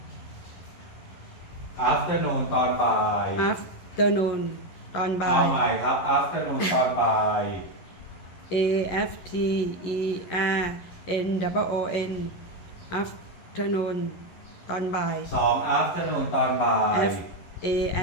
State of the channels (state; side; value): late; right; 11 ms